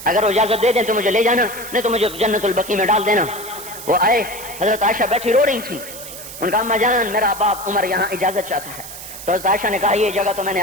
اگر وہ اجازت دے دیں تو مجھے لے جانا، نہیں تو مجھے جنت البقیع میں ڈال دینا۔ وہ آئے، حضرت عائشہ بیٹھی رو رہی تھی، ان کا اماں جان میرا باپ عمر یہاں اجازت چاہتا ہے۔ تو حضرت عائشہ نے کہا یہ جگہ تو میں نے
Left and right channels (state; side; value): noise; right; hiss, 12 dB below the sound